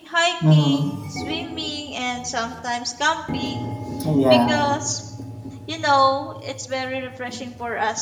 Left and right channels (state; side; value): identical; both; correlation 1.00